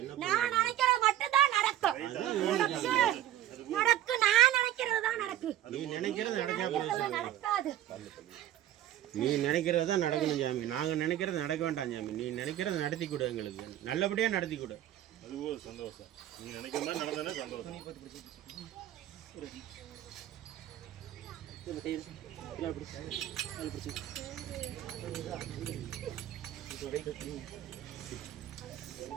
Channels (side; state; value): left; quieter; 12.5 dB